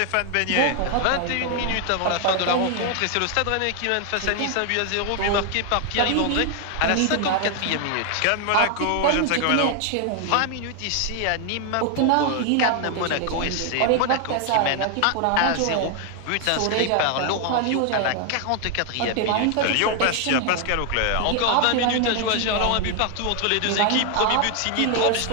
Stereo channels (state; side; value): different; both; correlation 0.00